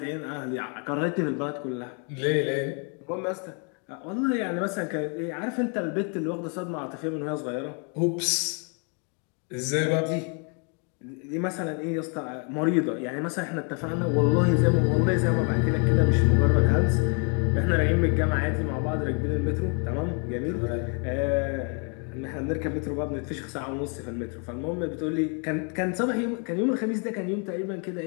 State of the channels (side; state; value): right; quieter; 38.2 dB